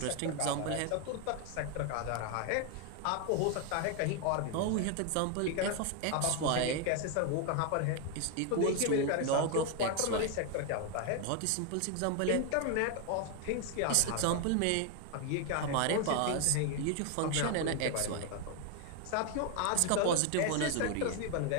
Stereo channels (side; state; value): both; different; correlation 0.01